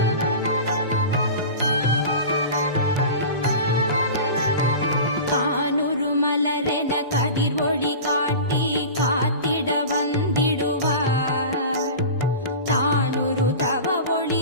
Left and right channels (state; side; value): inverted; both; correlation -0.33